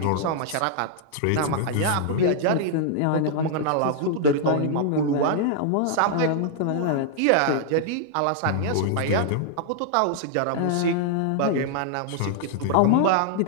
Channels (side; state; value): both; different; correlation -0.01